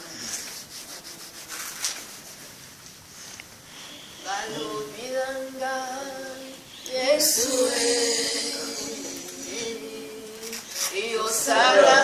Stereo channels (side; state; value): both; identical; correlation 1.00